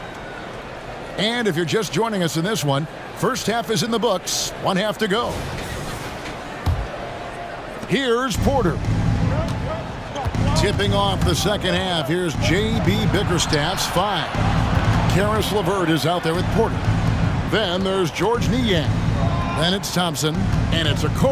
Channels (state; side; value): identical; both; correlation 1.00